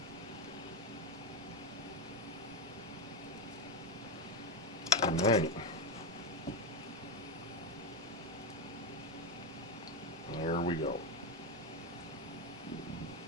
And then there we go.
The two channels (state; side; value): normal; both; correlation 0.10